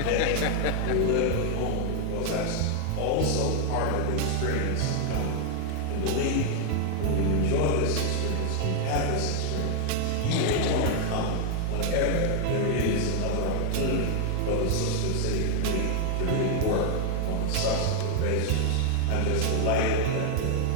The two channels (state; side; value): different; both; correlation 0.00